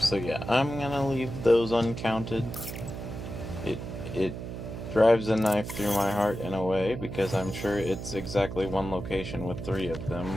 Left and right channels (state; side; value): noise; right; hum, 7 dB below the sound